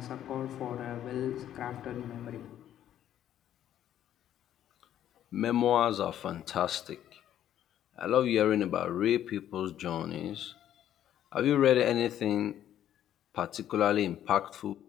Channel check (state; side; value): quieter; right; 11.1 dB